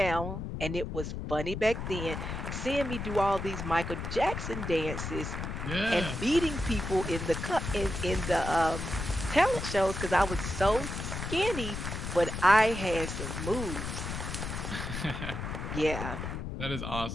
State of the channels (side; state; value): left; noise; rumble, 5 dB below the sound